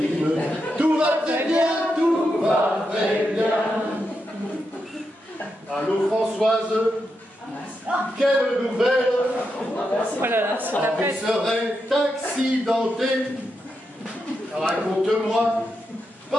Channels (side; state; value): both; normal; correlation 0.85